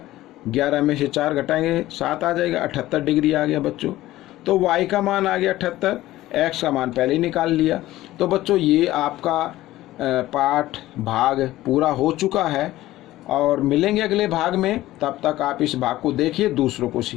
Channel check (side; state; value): right; quieter; 15.9 dB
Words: 11 में से 4 घटाएंगे 7 आ जाएगा, 78 डिग्री आ गया बच्चों। तो y का मान आ गया 78, x का मान पहले ही निकाल लिया। तो बच्चों ये आपका पाठ भाग पूरा हो चुका है, और मिलेंगे अगले भाग में। तब तक आप इस भाग को देखिए, दूसरों को